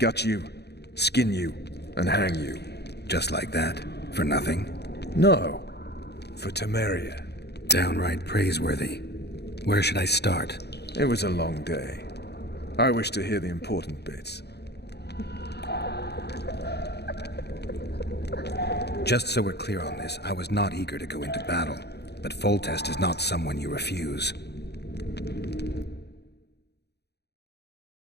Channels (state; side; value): late; right; 0.48 ms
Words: you, skin you, and hang you. Just like that? For nothing? No. For Temeria. Downright praiseworthy. Where should I start? It was a long day. I wish to hear the important bits. Just so we're clear on this, I was not eager to go into battle. But Foltest is not someone you refuse.